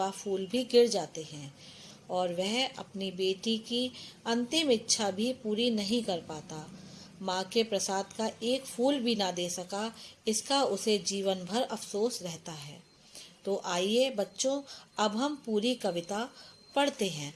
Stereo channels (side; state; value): both; identical; correlation 1.00